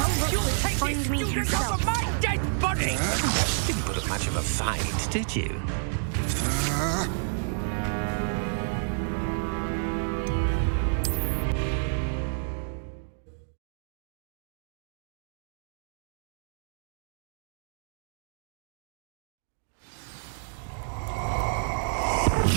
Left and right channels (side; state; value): left; silent; digital silence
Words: Find me himself. My dead body! Didn't put up much of a fight, did you?